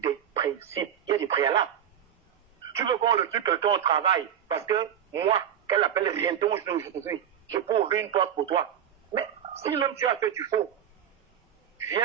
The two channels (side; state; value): left; quieter; 9.4 dB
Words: principes, il y a des préalables. Tu veux qu'on le tue quelqu'un au travail parce que moi, qu'elle appelle rien dont je peux ouvrir une porte pour toi. Mais si même tu as fait du faux,